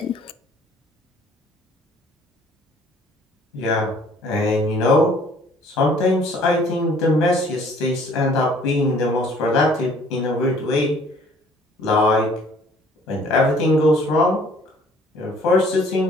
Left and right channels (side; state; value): both; normal; correlation 0.57